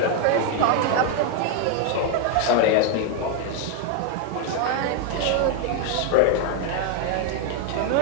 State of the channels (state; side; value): different; both; correlation 0.01